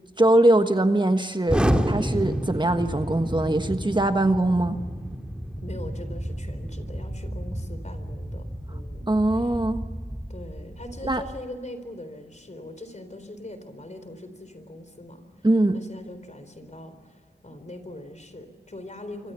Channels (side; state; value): both; normal; correlation 0.86